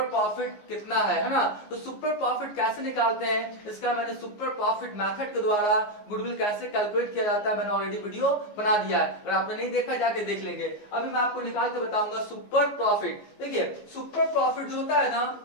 प्रॉफिट कितना है ना। तो सुपर प्रॉफिट कैसे निकालते हैं, इसका मैंने सुपर प्रॉफिट मेथड के द्वारा गुडविल कैसे कैलकुलेट किया जाता है मैंने ऑलरेडी वीडियो बना दिया है। अगर आपने नहीं देखा जाके देख लेंगे। अभी मैं आपको निकाल के बताऊंगा सुपर प्रॉफिट। देखिए सुपर प्रॉफिट जो होता है ना,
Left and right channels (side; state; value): right; late; 14 ms